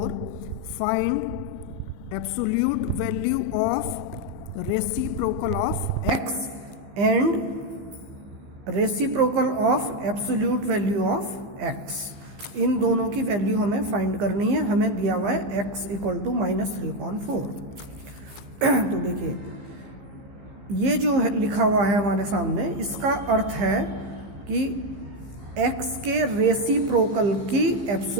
find absolute value of reciprocal of x and reciprocal of absolute value of x. इन दोनों की value हमें find करनी है. हमें दिया हुआ है x equal to minus 3/4. तो देखिए ये जो है लिखा हुआ है हमारे सामने, इसका अर्थ है कि x के रेसिप्रोकल की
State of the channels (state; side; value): late; left; 15 ms